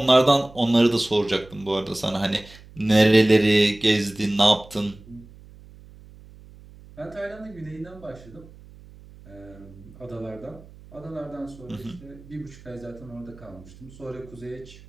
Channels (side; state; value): right; noise; hum, 21 dB below the sound